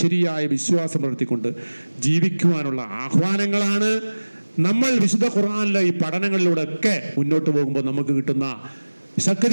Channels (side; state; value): both; inverted; correlation -1.00